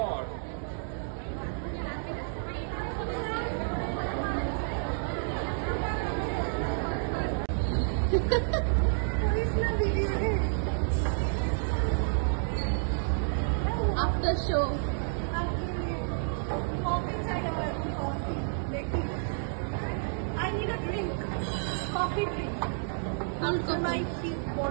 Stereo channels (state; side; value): silent; left; digital silence